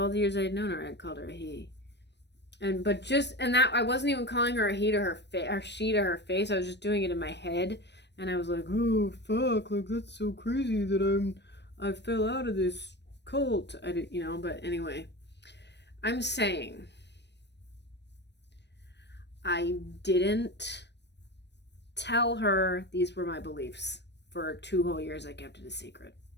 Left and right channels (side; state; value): right; late; 0.50 ms